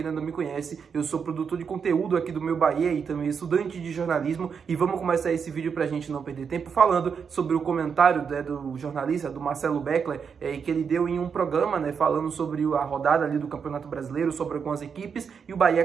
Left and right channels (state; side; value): quieter; left; 6.5 dB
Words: ainda não me conhece, eu sou produtor de conteúdo aqui do Meu Bahia e também estudante de jornalismo. E vamos começar esse vídeo pra gente não perder tempo falando sobre o comentário, né, do jornalista, do Marcelo Beckler, que ele deu em um programa, né, falando sobre a rodada ali do Campeonato Brasileiro, sobre algumas equipes, e o Bahia